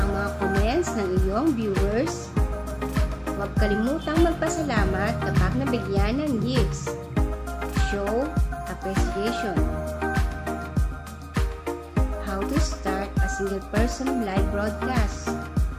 mga comments ng iyong viewers. Huwag kalimutang magpasalamat kapag nabigyan ng gifts. Show appreciation. How to start a single person live broadcast.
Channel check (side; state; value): both; identical; correlation 1.00